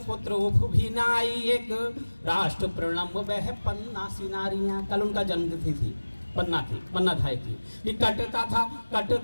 पुत्र उफ भी नाई, एक राष्ट्र प्रणम वह पन्ना सी नारियां। कल उनका जन्मतिथि थी, पन्ना धाय की। कि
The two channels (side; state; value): both; inverted; correlation -1.00